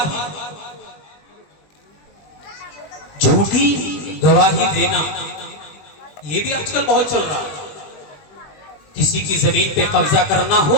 گواہی دینا یہ بھی آج کل بہت چل رہا ہے۔ کسی کی زمین پہ قبضہ کرنا ہو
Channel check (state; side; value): late; right; 21 ms